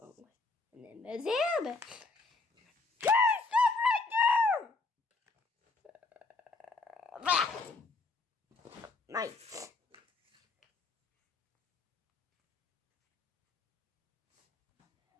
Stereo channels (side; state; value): right; quieter; 3.6 dB